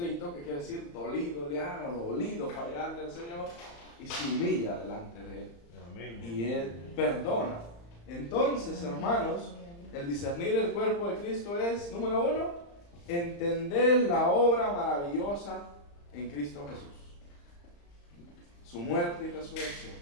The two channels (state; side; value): late; right; 35 ms